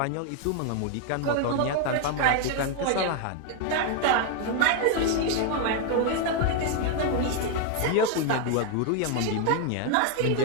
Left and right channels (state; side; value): different; both; correlation 0.01